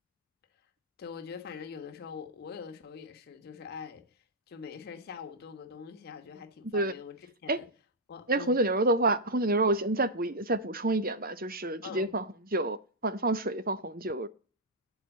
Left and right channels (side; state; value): both; normal; correlation -0.06